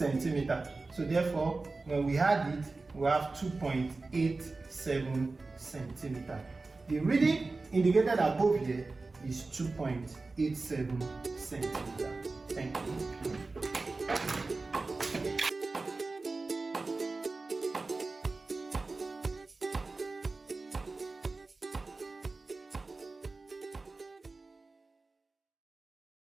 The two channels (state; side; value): quieter; left; 3.6 dB